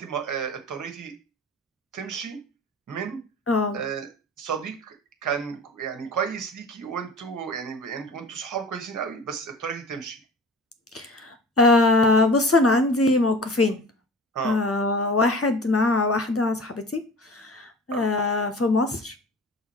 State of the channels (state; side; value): normal; both; correlation 0.40